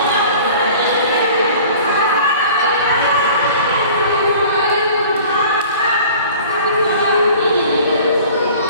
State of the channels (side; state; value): both; inverted; correlation -0.45